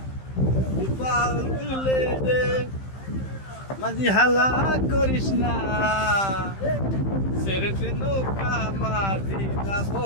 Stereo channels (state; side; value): late; right; 15 ms